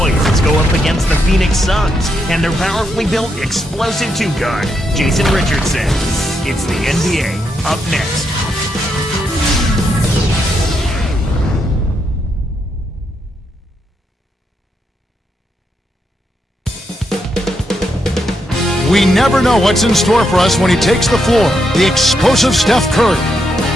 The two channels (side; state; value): both; normal; correlation 0.80